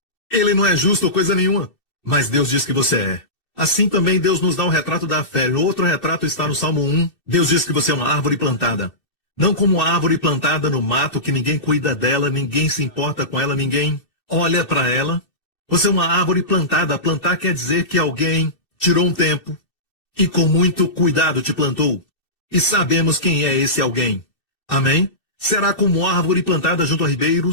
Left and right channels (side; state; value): right; late; 2.6 ms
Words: Ele não é justo ou coisa nenhuma. Mas Deus diz que você é. Assim também Deus nos dá um retrato da fé. O outro retrato está no Salmo 1. Deus diz que você é uma árvore plantada. Não como uma árvore plantada no mato, que ninguém cuida dela, ninguém se importa com ela, ninguém olha para ela. Você é uma árvore plantada. Plantar quer dizer que alguém tirou um tempo e com muito cuidado te plantou. E sabemos quem é esse alguém. Amém? Será como árvore plantada junto a